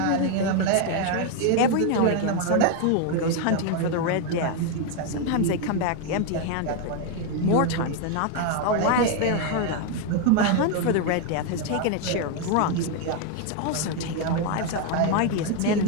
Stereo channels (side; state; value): both; different; correlation 0.01